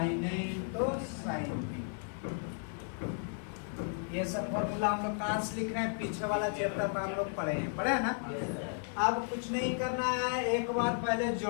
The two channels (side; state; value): right; silent; 55 dB below the other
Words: A into sine B. ये सब फॉर्मूला हम लोग कहाँ से लिख रहे हैं, पीछे वाला चैप्टर में हम लोग पढ़े हैं ना। अब कुछ नहीं करना है, एक बार पहले